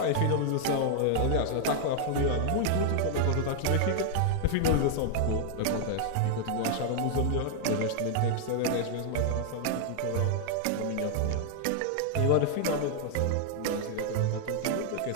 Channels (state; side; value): different; both; correlation 0.00